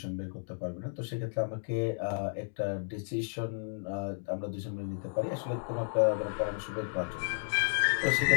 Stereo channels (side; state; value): right; silent; digital silence